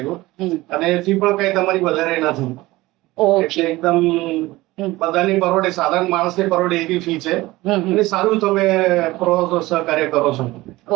અને ફી પણ કઈ તમારી વધારે નથી. ઓકે. એટલે એકદમ બધાની પરોડે, સાધારણ માણસની પરોડે એવી ફી છે અને સારું તમે સહકાર્ય કરો છો.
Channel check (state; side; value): quieter; left; 19.1 dB